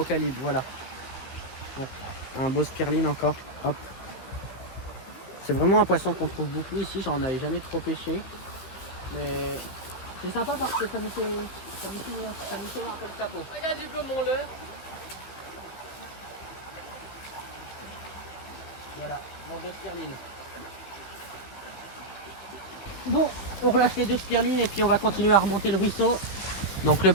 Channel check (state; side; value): late; right; 16 ms